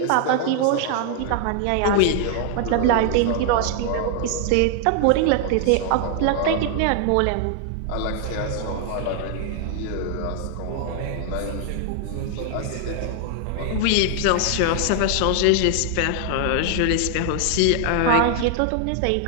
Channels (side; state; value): both; different; correlation 0.00